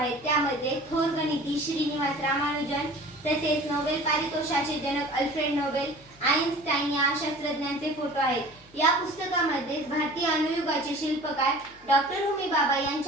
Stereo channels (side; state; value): left; noise; hum, 27 dB below the sound